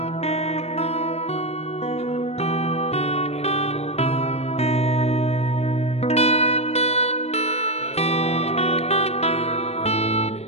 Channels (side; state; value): right; late; 0.31 ms